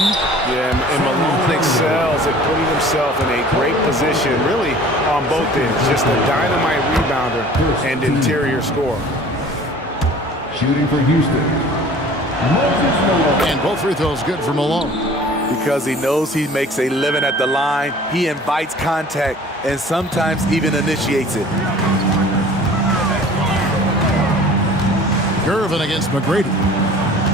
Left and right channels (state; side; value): normal; both; correlation 0.47